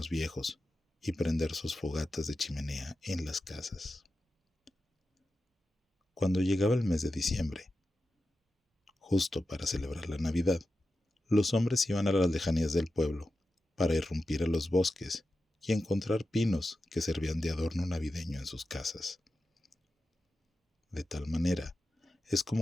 viejos y prender sus fogatas de chimenea en las casas. Cuando llegaba el mes de diciembre, justo para celebrar la Navidad, los hombres iban a las lejanías del pueblo para irrumpir a los bosques y encontrar pinos que servían de adorno navideño en sus casas. De tal manera es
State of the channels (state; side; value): normal; both; correlation 0.92